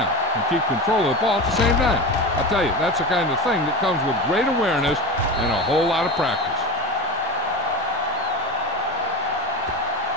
and keep control of the ball at the same time. I'll tell you, that's the kind of thing that comes with great awareness and a whole lot of practice.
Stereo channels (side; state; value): both; normal; correlation 0.26